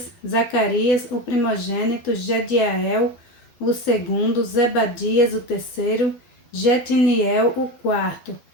Zacarias, o primogênito, Jediael, o segundo, Zebadias, o terceiro, Jetiniel, o quarto,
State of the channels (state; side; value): late; right; 12 ms